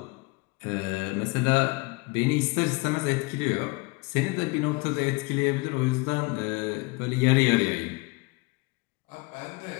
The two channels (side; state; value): right; quieter; 25.8 dB